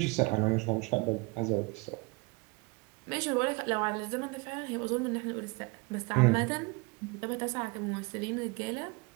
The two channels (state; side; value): quieter; left; 26.7 dB